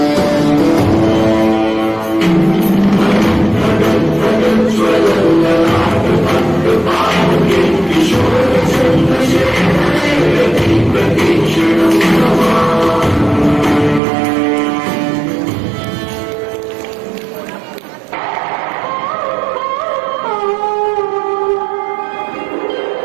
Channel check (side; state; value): left; drops out; at 14.0 s